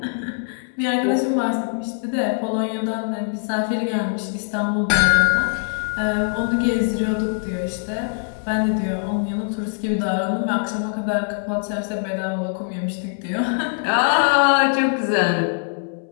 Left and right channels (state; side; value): silent; right; 64 dB below the other